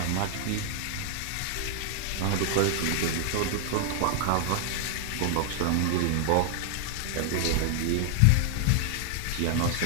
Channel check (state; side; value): different; both; correlation 0.00